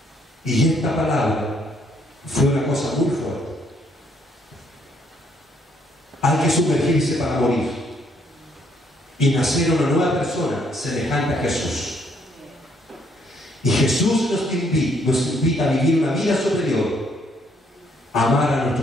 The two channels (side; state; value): both; normal; correlation 0.69